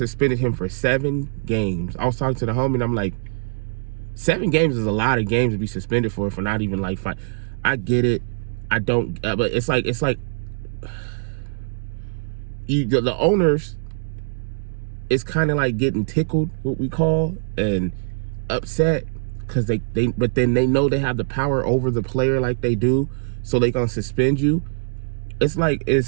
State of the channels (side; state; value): left; silent; digital silence